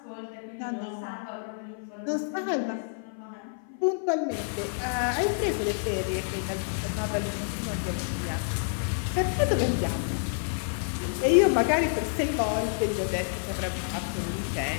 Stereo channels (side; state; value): right; silent; 56 dB below the other